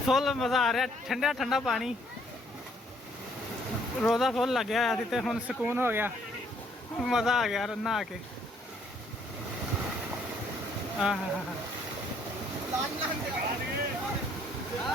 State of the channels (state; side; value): normal; both; correlation 0.66